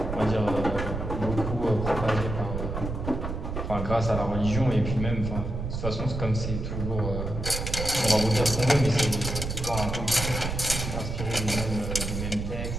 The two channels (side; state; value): right; noise; rumble, 4 dB below the sound